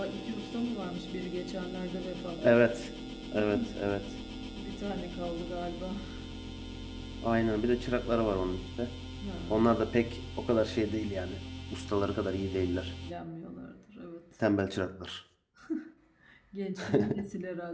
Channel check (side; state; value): both; identical; correlation 1.00